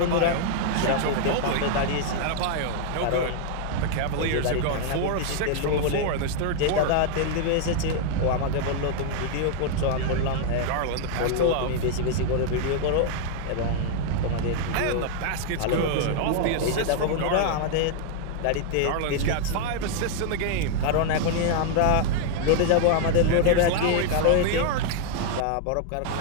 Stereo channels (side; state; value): both; different; correlation 0.00